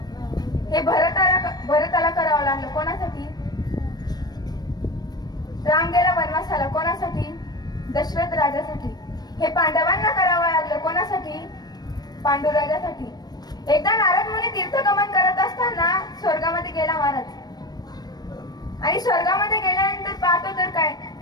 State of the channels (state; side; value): late; right; 0.19 ms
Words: हे भरताला करावं लागलं. कोणासाठी? राम गेला वनवासाला. कोणासाठी? दशरथ राजासाठी. हे पांडवांना करावं लागलं. कोणासाठी? पांडुराजासाठी. एकदा नारद मुनी तीर्थगमन करत असताना स्वर्गामध्ये गेला महाराज. आणि स्वर्गामध्ये गेल्यानंतर पाहतो तर काय,